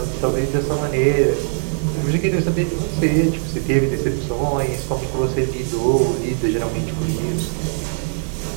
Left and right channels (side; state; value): left; silent; digital silence